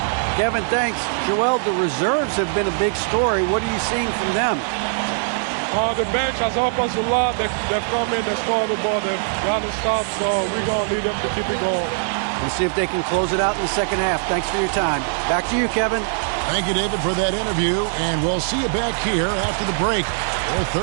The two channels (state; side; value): silent; left; 65 dB below the other